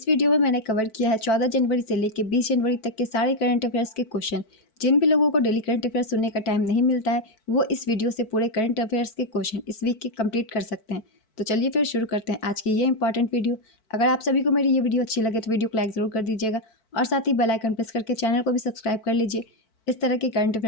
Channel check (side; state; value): right; late; 4.5 ms